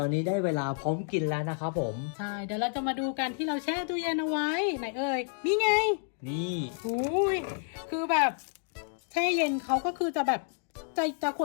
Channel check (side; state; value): right; silent; 58 dB below the other